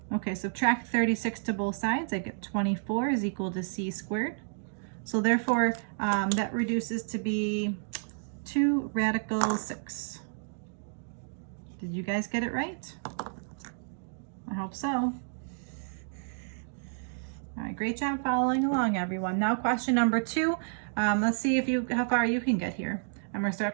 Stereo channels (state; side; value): silent; left; digital silence